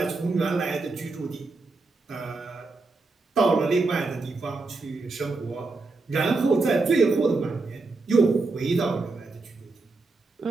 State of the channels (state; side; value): quieter; left; 3.7 dB